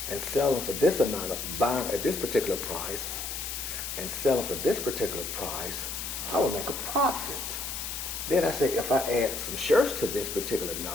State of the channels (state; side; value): noise; left; hiss, 5 dB below the sound